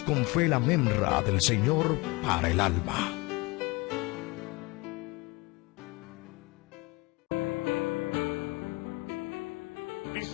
con fe la memra del Señor para el alma.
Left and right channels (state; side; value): quieter; right; 24.5 dB